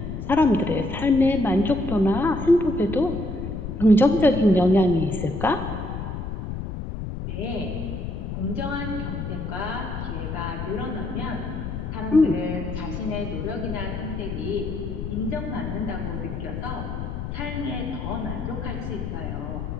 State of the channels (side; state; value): left; noise; rumble, 6 dB below the sound